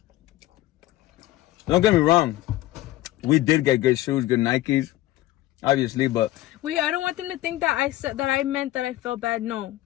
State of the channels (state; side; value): quieter; right; 15.7 dB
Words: Don't get me wrong, we did get good shoes, good Nikes, obviously, but wait, I don't want them to think that I meant that I felt bad. No,